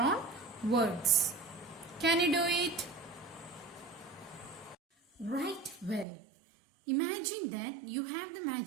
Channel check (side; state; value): left; drops out; at 6.1 s